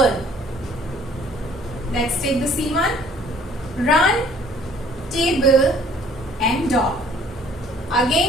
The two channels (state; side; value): normal; both; correlation 0.57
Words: Let's take the C one. Run, table, and dog.